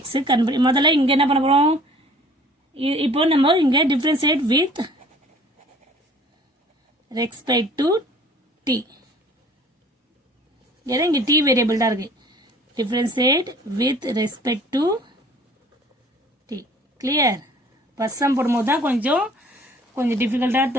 முதல்ல இங்க என்ன பண்ண போறோம் இப்போ நம்ம இங்க differentiate with respect to t இங்க t வேரியபிள் தான் இருக்கு differentiate with respect to t clear first sum போடும்போது தான் கொஞ்சம் டிஃபிகல்ட்டா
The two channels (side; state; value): both; normal; correlation 0.51